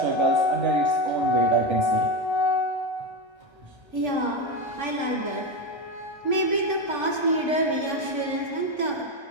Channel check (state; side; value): late; left; 1.3 ms